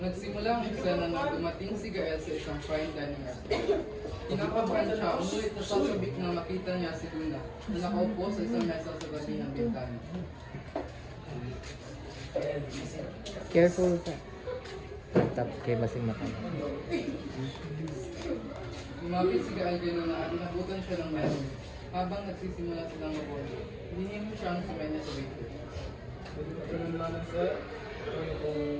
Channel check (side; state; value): both; identical; correlation 1.00